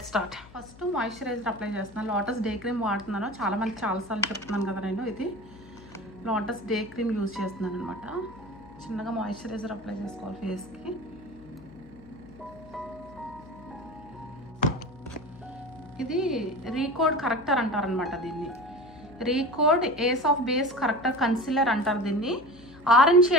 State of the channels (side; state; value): left; noise; hum, 21 dB below the sound